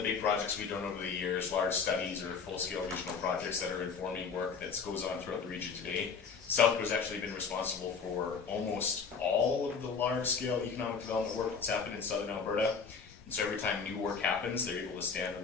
big projects we've done over the years, large studies or full-scale regional projects that are informing work that goes on throughout the region today. South Grove's actually been responsible for almost all of the large-scale economic development work that's happened in southern Alberta. And so every time new work happens, they're able to stand on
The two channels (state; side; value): quieter; right; 5.6 dB